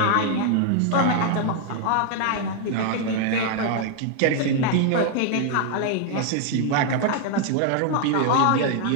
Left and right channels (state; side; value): different; both; correlation 0.00